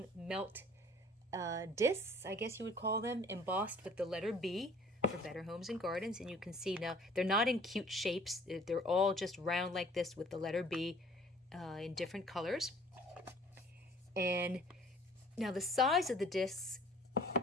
melt discs, I guess you would call them, embossed with the letter B for Better Homes and Gardens. And you can see now they're not in cute shapes, they're all just round like this with the letter B in different colors. And now the size of the discs,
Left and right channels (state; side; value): normal; both; correlation 0.53